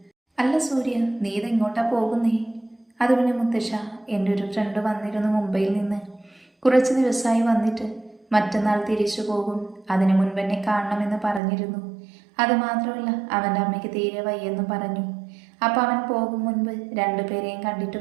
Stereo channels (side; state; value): left; drops out; at 11.4 s